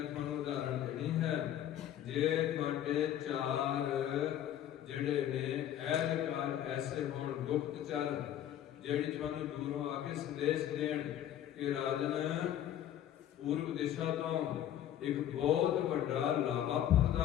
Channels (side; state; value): right; quieter; 11.2 dB